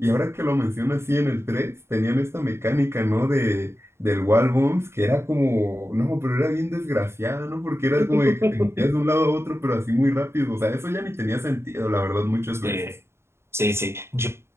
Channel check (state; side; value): late; left; 0.12 ms